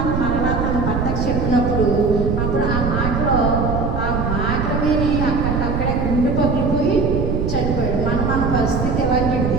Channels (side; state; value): right; noise; rumble, 1 dB below the sound